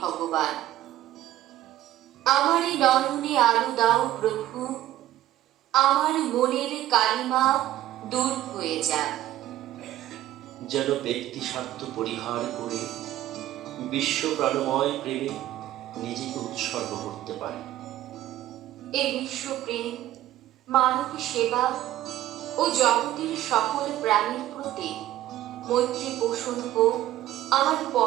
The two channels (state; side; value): quieter; left; 13.8 dB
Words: আমার এই নয়নে আলো দাও প্রভু। আমার মনের কালিমা দূর হয়ে যাক। যেন ব্যক্তি স্বার্থ পরিহার করে বিশ্ব প্রাণময় প্রেমে নিজেকে উৎসর্গ করতে পারে। এই বিশ্বপ্রেম, মানব সেবা ও জগতের সকল প্রাণীর প্রতি মৈত্রী পোষণ হোক আমার